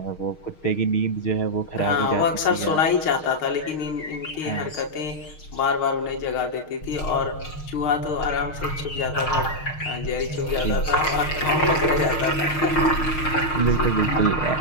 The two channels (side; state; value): right; late; 6.5 ms